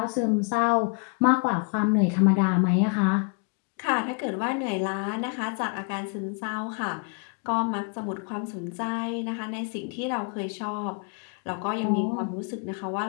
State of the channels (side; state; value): right; quieter; 37.7 dB